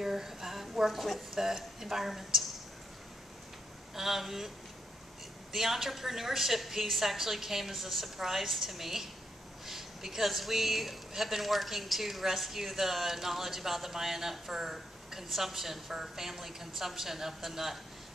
work with the environment? The entrepreneurship piece actually came as a surprise to me, because we have been working to rescue the knowledge about the Maya nut for consumption, for family consumption of the nut,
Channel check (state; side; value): normal; both; correlation 0.80